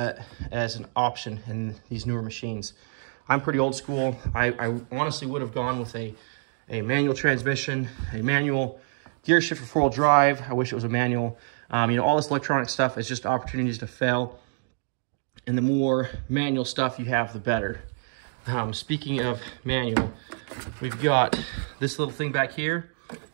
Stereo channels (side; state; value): left; silent; digital silence